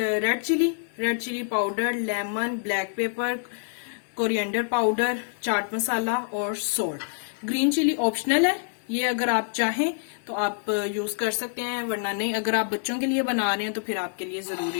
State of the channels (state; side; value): silent; right; 57 dB below the other